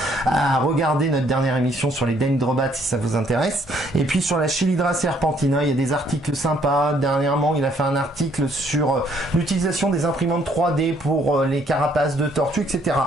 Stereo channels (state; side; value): normal; both; correlation 0.66